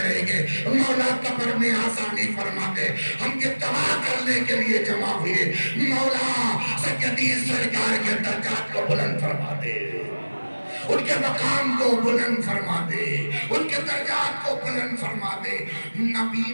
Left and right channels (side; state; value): both; inverted; correlation -1.00